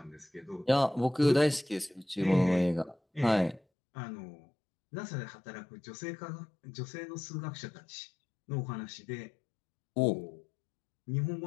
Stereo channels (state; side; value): drops out; right; at 3.6 s